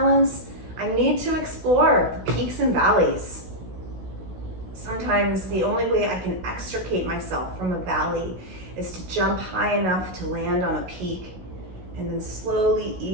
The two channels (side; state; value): left; late; 16 ms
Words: I need to explore the peaks and valleys. Sometimes the only way I can extricate myself from a valley is to jump high enough to land on a peak and then slowly